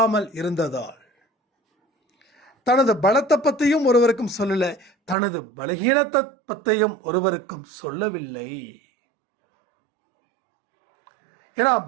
இருந்ததால், தனது பலத்தை பற்றியும் ஒருவருக்கும் சொல்லல, தனது பலகீனத்தை பற்றியும் ஒருவருக்கும் சொல்லவில்லை. ஏன்னா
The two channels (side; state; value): left; drops out; at 5.2 s